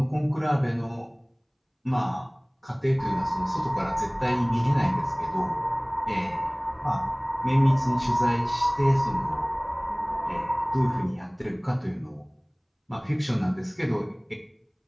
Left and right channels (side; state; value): both; identical; correlation 1.00